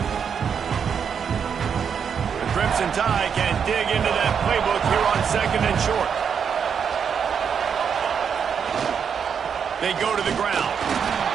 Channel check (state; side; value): quieter; left; 7.1 dB